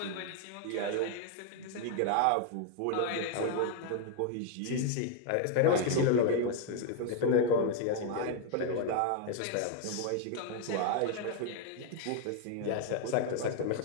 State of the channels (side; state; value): both; different; correlation 0.00